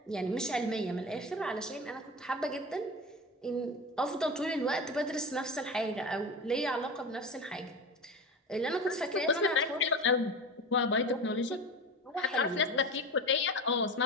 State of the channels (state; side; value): normal; both; correlation 0.28